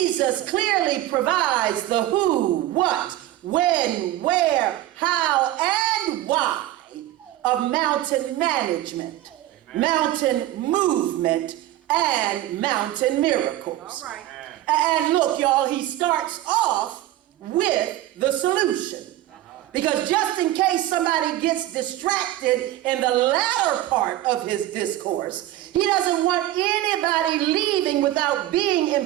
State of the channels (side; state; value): left; quieter; 14.5 dB